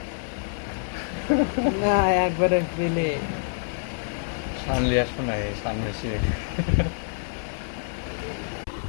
না একবারে পেলে সামনে আসবো না, সামনে এসে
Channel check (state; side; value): silent; right; 61 dB below the other